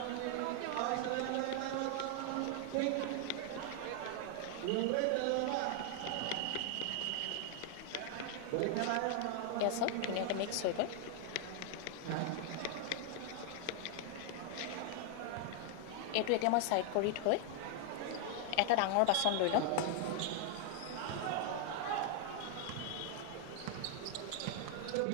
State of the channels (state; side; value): different; both; correlation 0.00